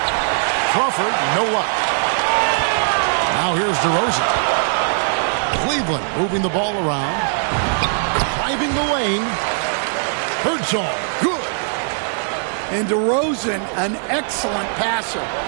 Crawford, no luck. Now here's DeRozan. Cleveland moving the ball around. Driving the lane. Birdsong, good. And DeRozan, an excellent passer,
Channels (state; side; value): silent; left; 66 dB below the other